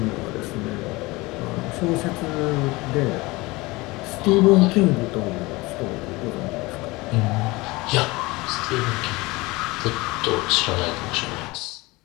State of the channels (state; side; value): quieter; right; 22.4 dB